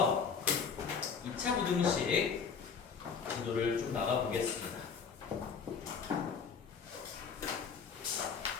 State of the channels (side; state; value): right; quieter; 6.0 dB